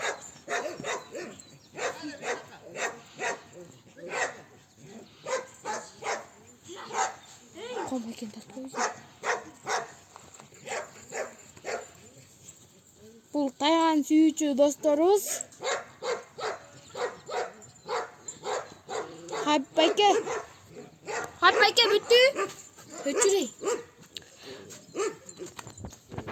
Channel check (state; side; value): identical; both; correlation 1.00